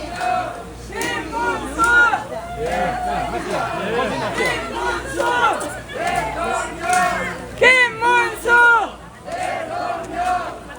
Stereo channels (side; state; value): both; identical; correlation 1.00